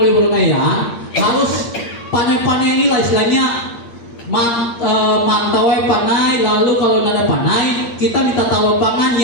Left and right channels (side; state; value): right; late; 8.6 ms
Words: harus panai-panai ini lah istilahnya mantau panai. Lalu kalau nada panai kita minta tahu pangan